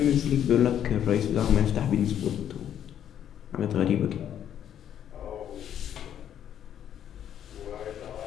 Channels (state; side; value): quieter; right; 9.9 dB